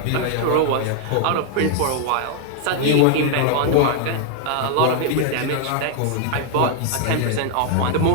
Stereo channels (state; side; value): different; both; correlation 0.00